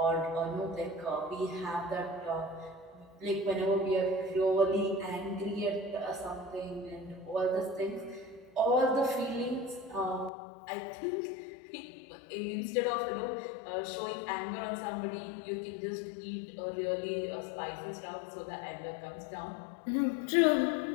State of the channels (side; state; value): right; drops out; at 10.3 s